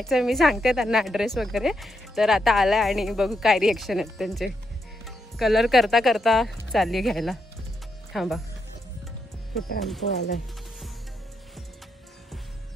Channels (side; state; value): both; normal; correlation 0.82